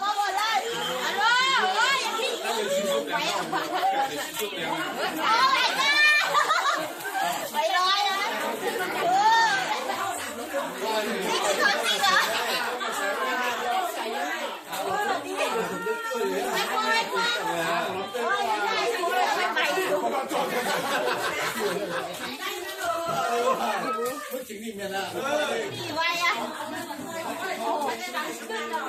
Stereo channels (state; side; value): identical; both; correlation 1.00